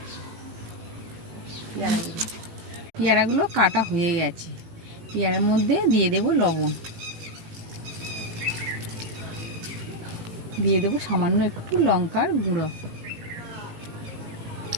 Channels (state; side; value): late; left; 18 ms